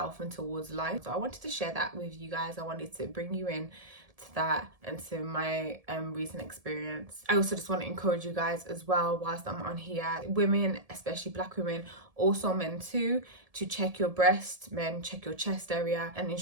and towards life. So I wanted to share that with you guys. I wanted to bring you in to that and to my recent experience. I also just want to encourage you guys as well, whilst I'm on here, women, especially Black women, also men too, to check your breast. Men, check your chest area, and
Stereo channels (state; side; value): late; left; 1.7 ms